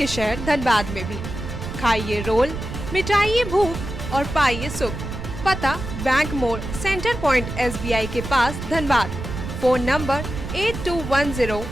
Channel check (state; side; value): noise; right; rumble, 7 dB below the sound